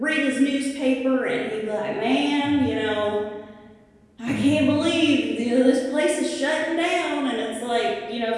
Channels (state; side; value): identical; both; correlation 1.00